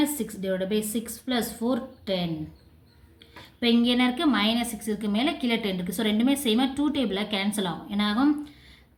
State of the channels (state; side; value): identical; both; correlation 1.00